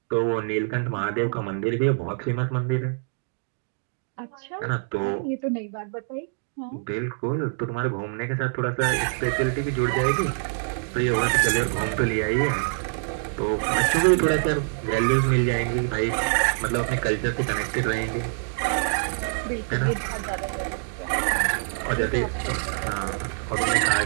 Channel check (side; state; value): left; silent; digital silence